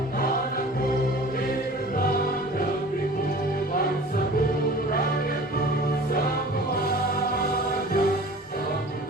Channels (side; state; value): both; normal; correlation 0.43